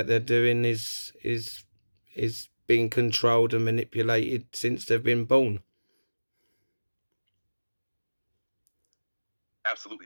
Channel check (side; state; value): both; inverted; correlation -1.00